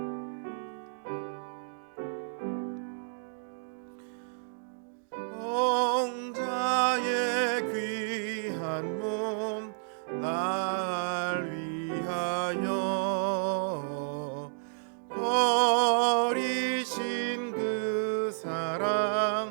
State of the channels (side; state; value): left; silent; digital silence